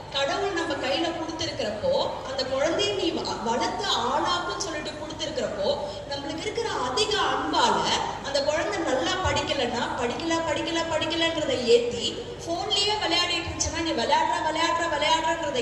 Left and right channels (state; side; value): identical; both; correlation 1.00